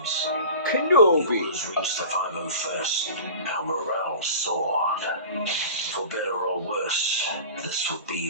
The Kenobi! orders reached the 501st. Our morale soared. For better or worse, this would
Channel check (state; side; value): inverted; both; correlation -0.38